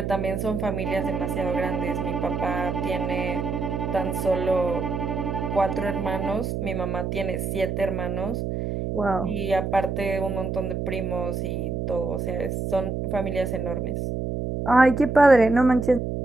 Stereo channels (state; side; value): noise; right; hum, 2 dB below the sound